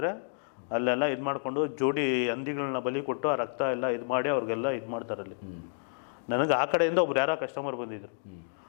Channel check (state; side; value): silent; right; digital silence